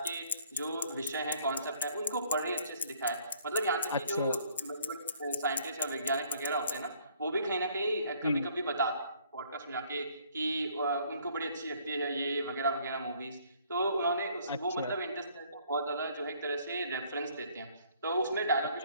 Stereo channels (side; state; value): both; inverted; correlation -0.61